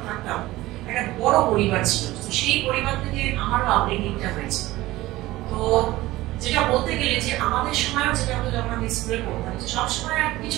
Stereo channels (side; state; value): left; quieter; 17.8 dB